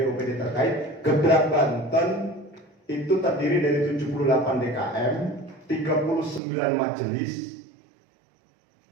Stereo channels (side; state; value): left; drops out; at 6.4 s